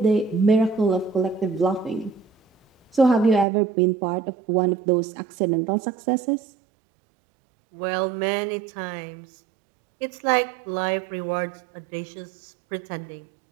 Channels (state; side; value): drops out; left; at 3.5 s